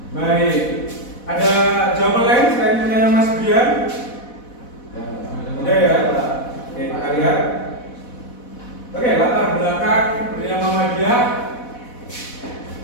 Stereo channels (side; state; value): right; late; 4.1 ms